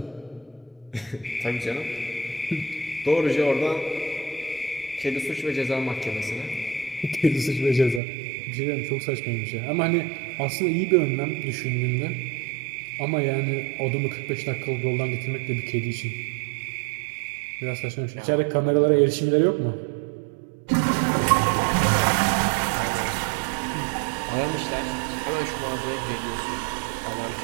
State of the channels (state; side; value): drops out; left; at 8.0 s